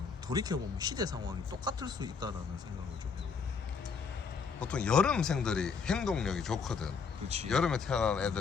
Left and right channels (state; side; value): quieter; right; 5.5 dB